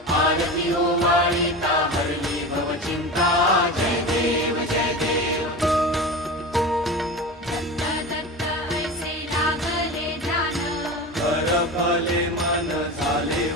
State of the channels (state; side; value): normal; both; correlation 0.28